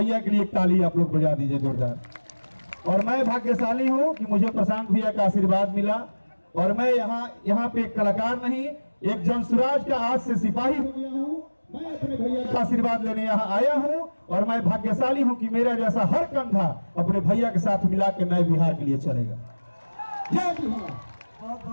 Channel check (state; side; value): inverted; both; correlation -1.00